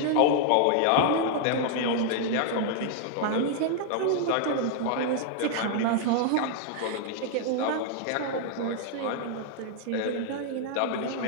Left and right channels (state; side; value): different; both; correlation 0.00